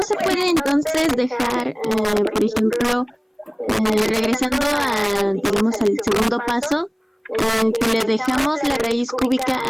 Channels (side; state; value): both; identical; correlation 1.00